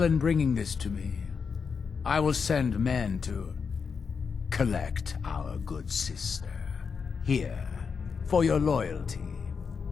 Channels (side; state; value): right; quieter; 5.8 dB